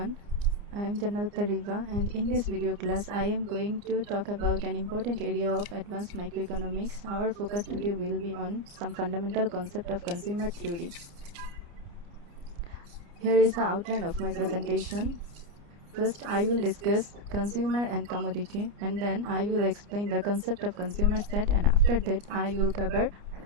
I am Janata Riva, and in this video class I am going to talk about an important area of advanced microeconomics. Our focus today will be on some fundamental concept of consumer theory. Here is the outline of my presentation. First, I will discuss consumer and commodity, and then I will explain the concept of consumer set, and after that I will cover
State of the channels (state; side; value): late; left; 29 ms